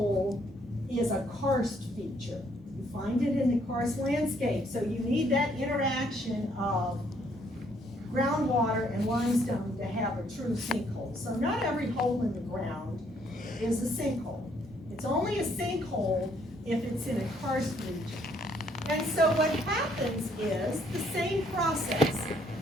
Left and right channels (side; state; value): both; normal; correlation 0.68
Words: is a karst feature. You find it in the karst landscape, so you need that interaction of groundwater and limestone to have a true sinkhole. So not every hole in the ground is a sinkhole. It's only a sinkhole if it's in a karst region. And so what happens is the same process.